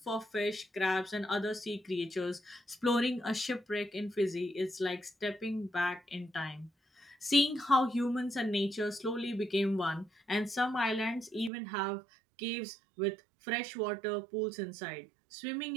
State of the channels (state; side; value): drops out; left; at 11.5 s